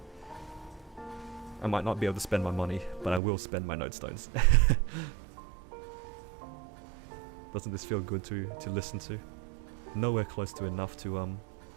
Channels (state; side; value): drops out; left; at 3.2 s